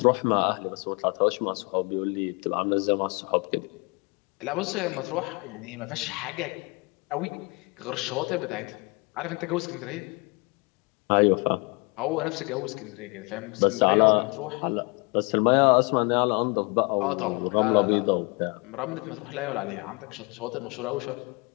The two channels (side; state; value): right; quieter; 29.7 dB